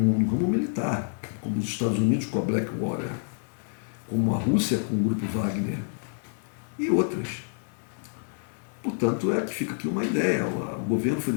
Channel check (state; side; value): silent; right; digital silence